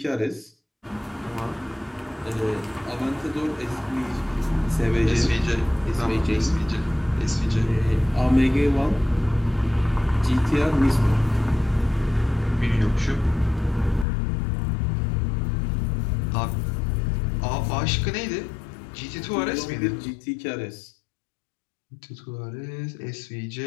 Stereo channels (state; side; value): drops out; right; at 14.1 s